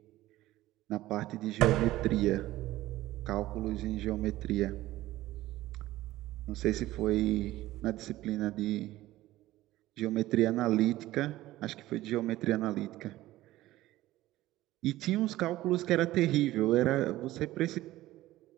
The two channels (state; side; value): quieter; left; 16.2 dB